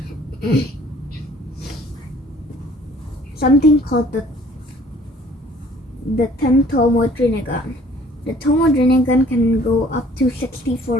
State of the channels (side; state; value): both; normal; correlation 0.55